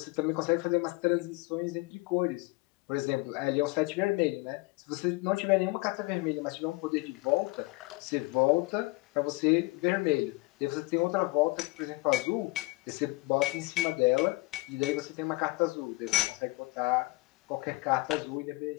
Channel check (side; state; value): right; quieter; 23.1 dB